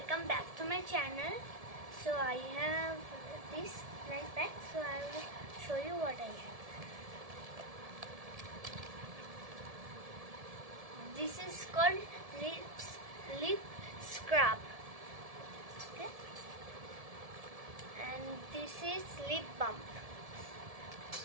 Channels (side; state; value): left; late; 1.7 ms